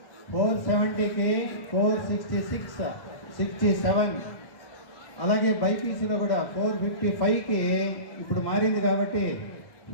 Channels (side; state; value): right; late; 1.1 ms